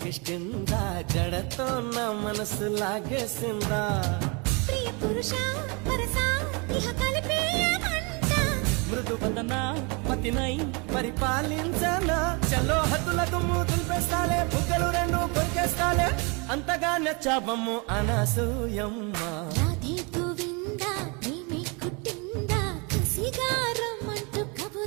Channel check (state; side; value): quieter; left; 31.2 dB